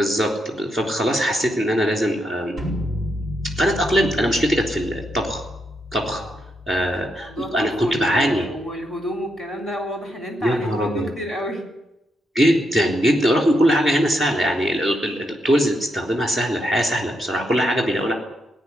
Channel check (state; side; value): normal; both; correlation 0.81